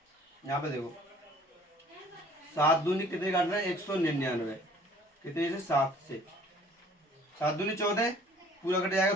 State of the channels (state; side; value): normal; both; correlation 0.54